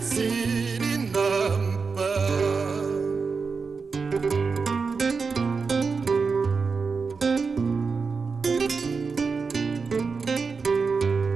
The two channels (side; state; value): left; quieter; 4.9 dB